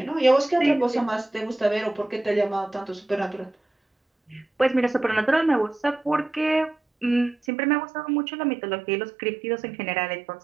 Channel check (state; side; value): drops out; left; at 7.4 s